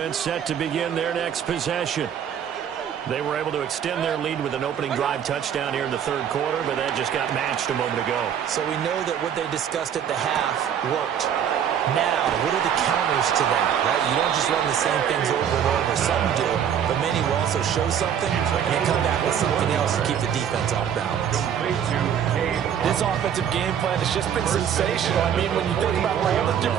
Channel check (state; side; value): quieter; left; 8.8 dB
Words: set to begin their next possession. They were able to extend their lead with an opening drive touchdown here in the 3rd quarter, but that just got matched a moment ago. So we know that what they discussed at the half worked. Now, what are the counters to that, right? You don't just run the same things over and over. Some do, but many will also show something and then come back with something else to keep the defense off balance. This offensive game plan has just been sensational. I mean, when you think about all the